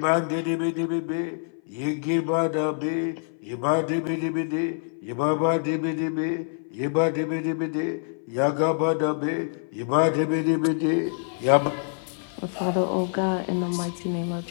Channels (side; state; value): right; silent; 58 dB below the other